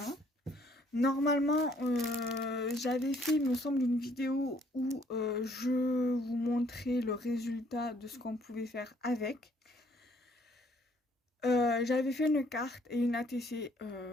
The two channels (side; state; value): both; normal; correlation 0.63